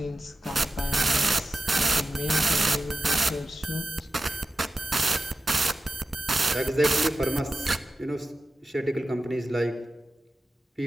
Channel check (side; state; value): both; normal; correlation 0.92